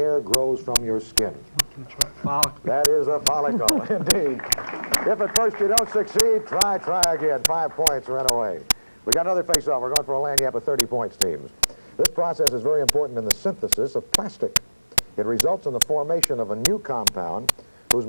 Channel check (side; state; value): both; inverted; correlation -1.00